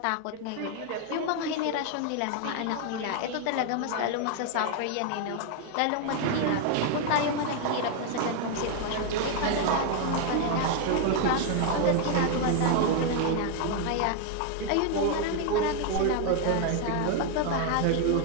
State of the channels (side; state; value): both; different; correlation 0.00